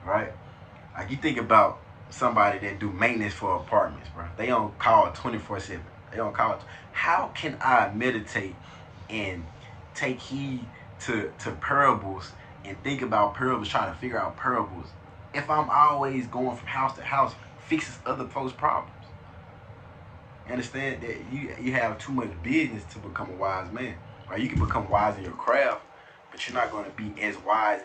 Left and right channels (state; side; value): identical; both; correlation 1.00